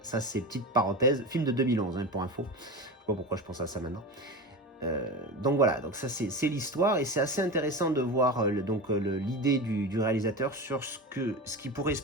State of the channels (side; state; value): both; normal; correlation 0.26